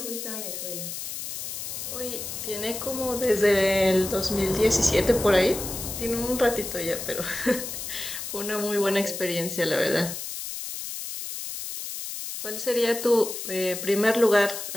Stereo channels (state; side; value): noise; left; hiss, 7 dB below the sound